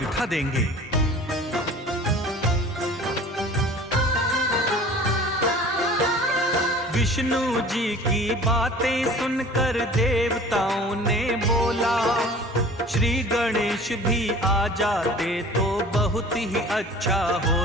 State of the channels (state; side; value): normal; both; correlation 0.44